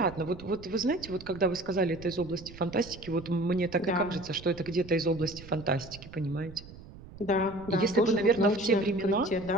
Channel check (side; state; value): right; noise; rumble, 17 dB below the sound